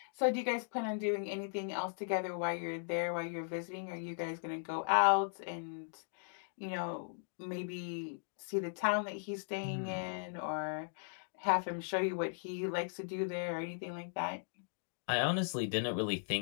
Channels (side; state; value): right; silent; digital silence